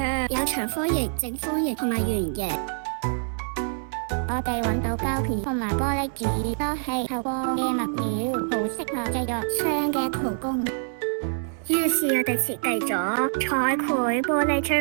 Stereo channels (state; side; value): silent; left; 61 dB below the other